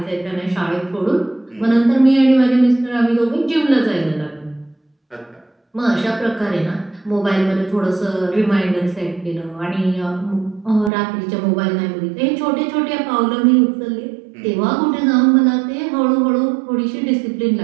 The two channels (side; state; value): left; drops out; at 10.9 s